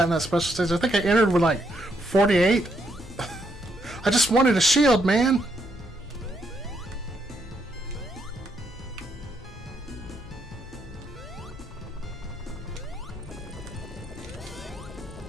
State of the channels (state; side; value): normal; both; correlation 0.76